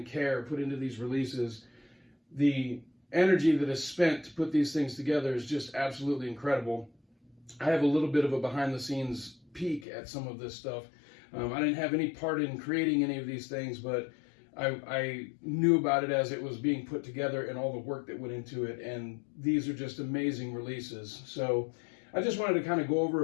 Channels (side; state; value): right; drops out; at 9.9 s